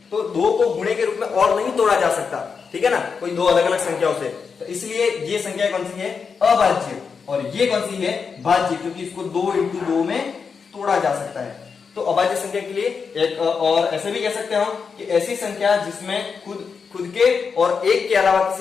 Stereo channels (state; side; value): quieter; right; 5.7 dB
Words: तो 2 को गुणे के रूप में और नहीं तोड़ा जा सकता। ठीक है ना, कोई 2 अलग अलग संख्याओं से। तो इसलिए ये संख्या कौन सी है? अभाज्य। और ये कौन सी है, भाज्य, क्योंकि इसको 2 इंटू 2 में तोड़ा जा सकता है। तो अभाज्य संख्या के लिए एक और ऐसे भी कह सकते हैं हम कि ऐसी संख्या जिसमें खुद के और एक के अलावा